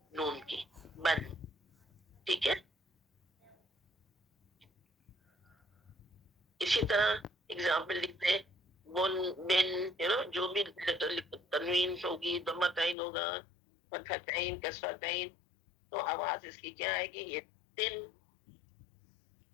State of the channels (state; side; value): drops out; right; at 13.0 s